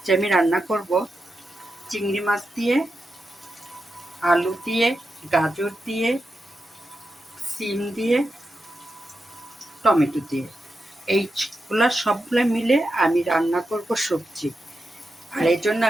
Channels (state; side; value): normal; both; correlation 0.88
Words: আমি রান্না করব চিংড়ি মাছ দিয়ে, আলু দিয়ে, গাজর দিয়ে, সিম দিয়ে, টমেটো দিয়ে। এইগুলা সবগুলো মিলে আমি রান্না করব সবজি। আর এই জন্য